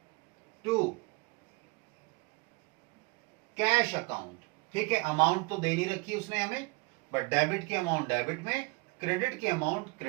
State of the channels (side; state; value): left; quieter; 28.0 dB